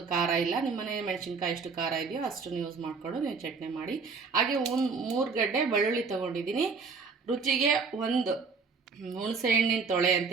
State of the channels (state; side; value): quieter; left; 4.9 dB